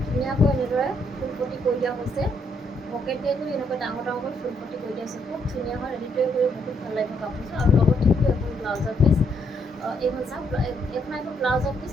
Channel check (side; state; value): both; normal; correlation 0.74